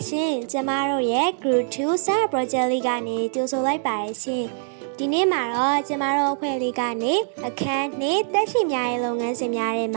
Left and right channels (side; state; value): left; silent; digital silence